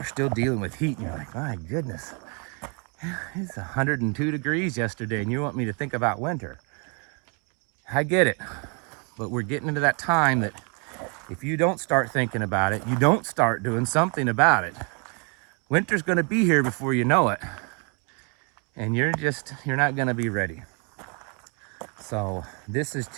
still dealing with heat, and you're like, my goodness, it's 102 degrees yesterday, and you want me to think about winter. I get it, but we're getting into that time that if you don't start thinking about it, you don't start doing something about it, winter's gonna be here before you know it, and you're not gonna be ready. So this is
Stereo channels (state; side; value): quieter; left; 36.1 dB